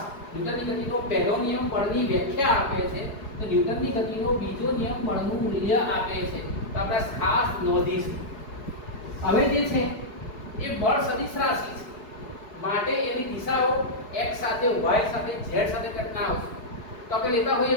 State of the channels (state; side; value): late; right; 4.7 ms